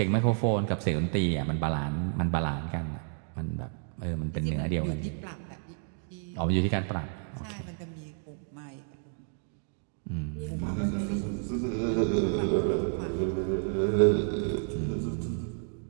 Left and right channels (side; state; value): left; silent; 55 dB below the other